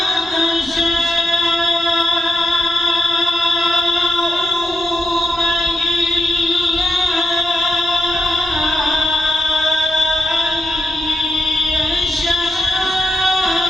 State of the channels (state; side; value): noise; left; rumble, 25 dB below the sound